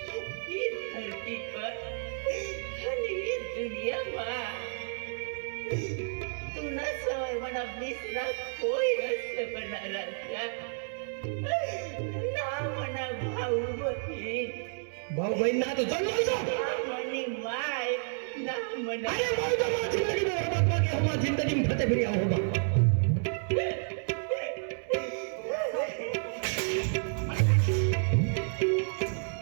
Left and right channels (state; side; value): silent; left; 57 dB below the other